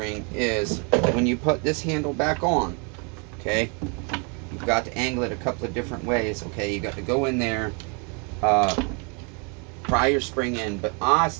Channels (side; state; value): left; quieter; 35.3 dB